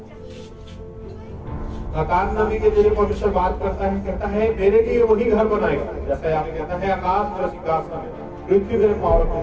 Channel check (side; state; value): both; identical; correlation 1.00